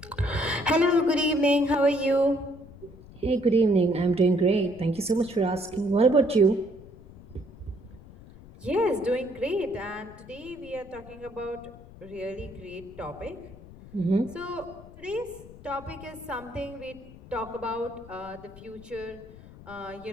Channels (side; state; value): left; noise; rumble, 19 dB below the sound